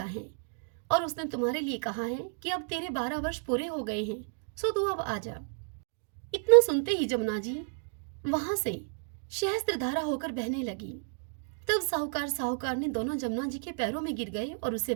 है और उसने तुम्हारे लिए कहा है कि अब तेरे 12 वर्ष पूरे हो गए हैं, सो तू अब आ जा। इतना सुनते ही जमुना जी वहां से सहस्त्रधारा होकर बहने लगी। तब साहूकार ने दोनों जमुना जी के पैरों में गिर गए और उससे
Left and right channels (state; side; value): silent; left; digital silence